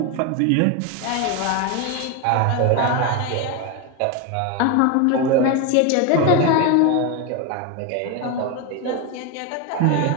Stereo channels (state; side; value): different; both; correlation 0.02